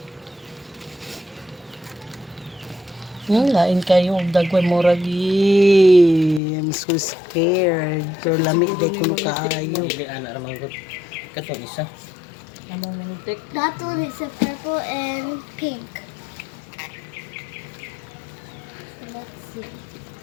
Lain kayo og dagway moragi. I'm so scared. Pero lami day kuno kaayo. Dili ana ra manggod. Katong isa. That one is a purple and pink. Let's see.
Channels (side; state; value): right; drops out; at 6.4 s